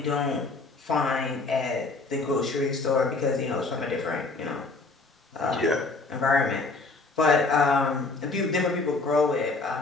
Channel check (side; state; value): right; quieter; 3.6 dB